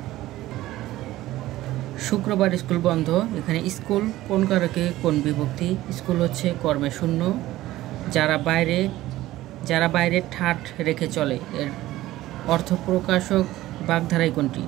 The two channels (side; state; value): left; quieter; 16.0 dB